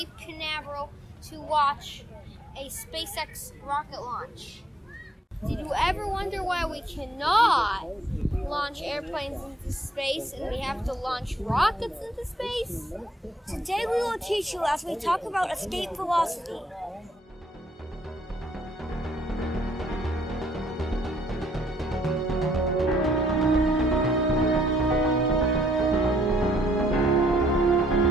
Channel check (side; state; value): both; normal; correlation 0.68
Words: Canaveral to watch a SpaceX rocket launch. Did you ever wonder why we cannot launch airplanes into space and we have to launch rockets into space? Today we will teach you as we talk about escape velocity.